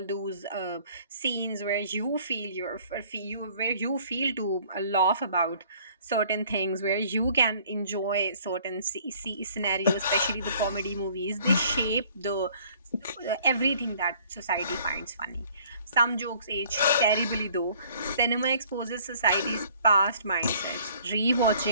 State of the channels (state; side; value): inverted; both; correlation -0.56